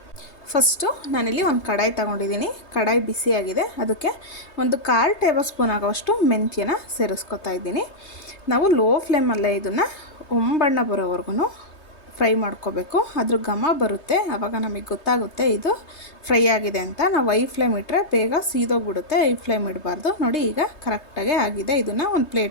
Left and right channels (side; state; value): right; late; 3.3 ms